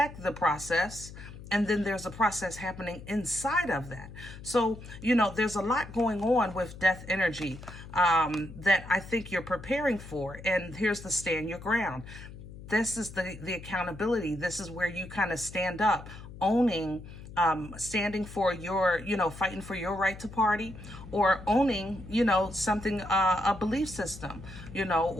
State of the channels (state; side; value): noise; left; hum, 14 dB below the sound